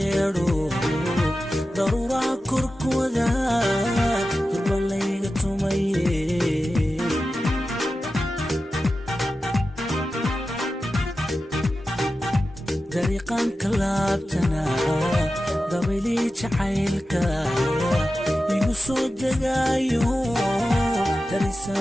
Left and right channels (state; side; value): normal; both; correlation 0.93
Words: darura korkooda durbalayga tumaye dariiqan kalaabtana dabili jacaylka igu soo degaayo